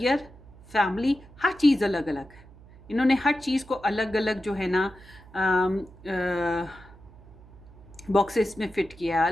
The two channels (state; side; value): noise; right; hum, 22 dB below the sound